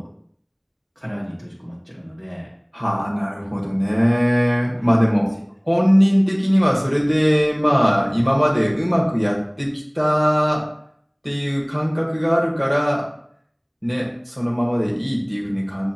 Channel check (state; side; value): identical; both; correlation 1.00